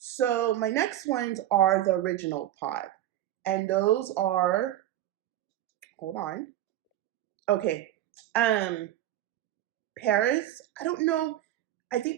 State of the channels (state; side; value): quieter; left; 13.0 dB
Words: my next ones are the original pod. And those are, hold on. Okay. Paris, I don't know. I think